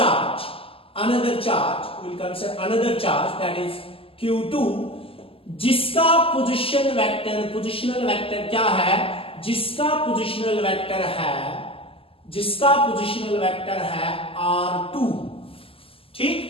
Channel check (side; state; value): right; late; 0.26 ms